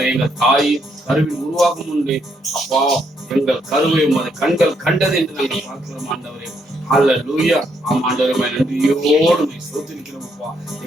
எங்கள் தாய் கருவில் உருவாகும் முன்பே அப்பா, எங்கள் கருவை உமது கண்கள் கண்டது என்று நாங்கள் பார்க்கிறோம் ஆண்டவரே. ஹல்லேலூயா. ஆம் ஆண்டவரே, நன்றியோடு ஸ்தோத்திரிக்கிறோம் அப்பா.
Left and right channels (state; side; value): normal; both; correlation 0.74